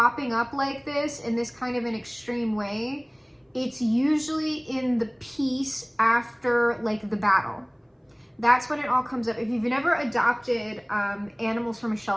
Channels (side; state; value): both; identical; correlation 1.00